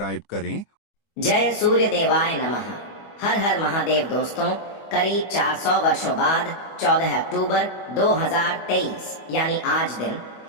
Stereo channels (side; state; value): right; late; 25 ms